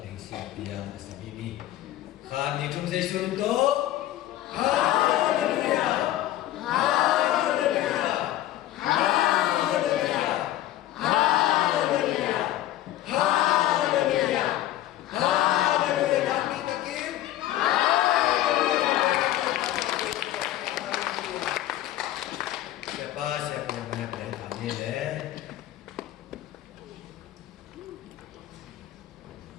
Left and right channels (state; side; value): quieter; right; 13.9 dB